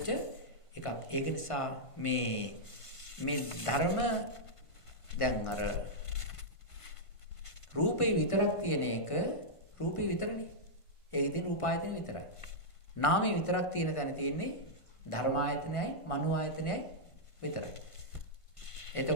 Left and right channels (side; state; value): right; late; 1.5 ms